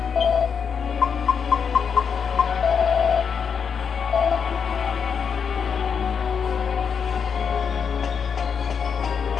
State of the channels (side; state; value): right; quieter; 6.6 dB